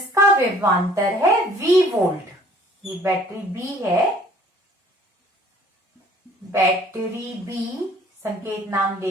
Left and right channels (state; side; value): normal; both; correlation 0.55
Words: विभवांतर है V वोल्ट। ये बैटरी B है, बैटरी B संकेत नाम दे